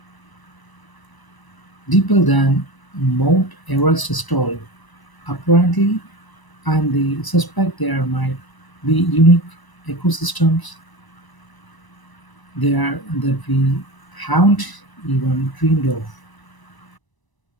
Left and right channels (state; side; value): late; right; 1.0 ms